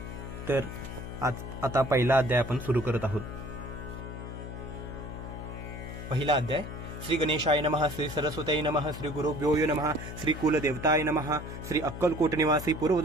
तर आता पहिला अध्याय आपण सुरू करत आहोत. पहिला अध्याय. श्री गणेशाय नमः, श्री सरस्वतीय नमः, श्री गुरुभ्यो नमः, श्री कुलदेवताय नमः, श्री अक्कलकोट निवासी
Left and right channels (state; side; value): noise; left; hum, 9 dB below the sound